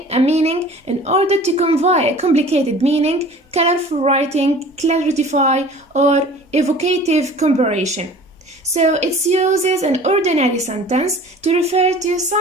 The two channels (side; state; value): both; normal; correlation 0.45